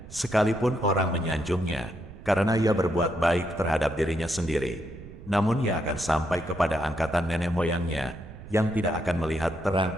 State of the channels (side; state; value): right; noise; rumble, 16 dB below the sound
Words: sekalipun orang menyanjungnya, karena ia berbuat baik terhadap dirinya sendiri, namun ia akan sampai kepada angkatan nenek moyangnya, yang tidak akan melihat